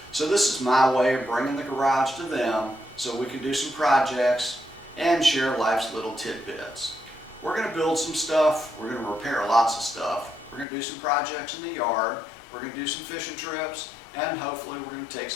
So this is my way of bringing the garage to them so we can do some projects and share life's little tidbits. We're going to build some stuff, we're going to repair lots of stuff, we're going to do some projects in the yard, we're going to do some fishing trips, and hopefully we're going to take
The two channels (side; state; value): right; drops out; at 10.7 s